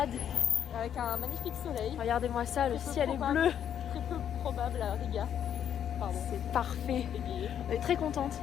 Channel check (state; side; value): quieter; right; 9.3 dB